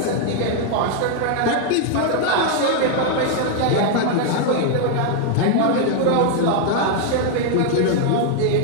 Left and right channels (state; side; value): different; both; correlation 0.00